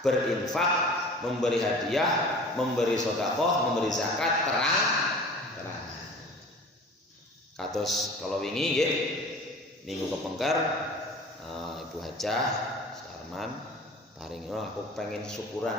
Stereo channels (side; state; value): both; normal; correlation 0.42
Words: memberi hadiah, memberi sedekah, memberi zakat terang. Kados kalau wingi nggih, minggu kepengker Ibu Hajah Sarman paring, aku pengen